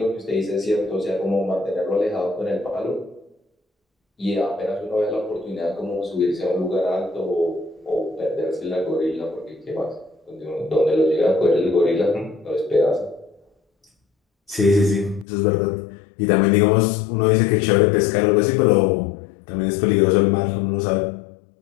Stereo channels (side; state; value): right; drops out; at 15.2 s